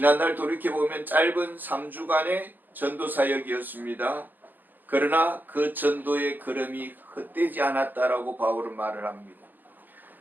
돌이켜보면 짧은 3주간의 전도 사역이었습니다. 그러나 그 전도의 걸음이 헛되지 않았다라고 바울은 말을 합니다.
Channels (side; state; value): left; late; 0.087 ms